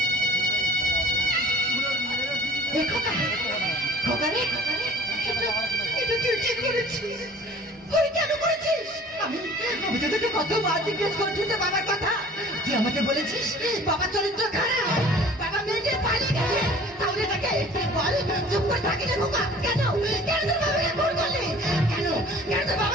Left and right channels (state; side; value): normal; both; correlation 0.48